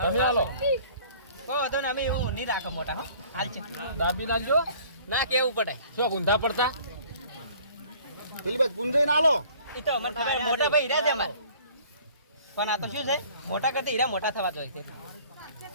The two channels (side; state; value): both; inverted; correlation -0.52